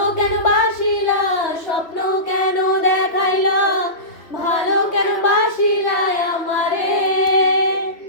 কেন বাসিলা স্বপ্ন কেন দেখাইলা ভালো কেন বাসিলা আমারে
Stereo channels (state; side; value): late; right; 3.1 ms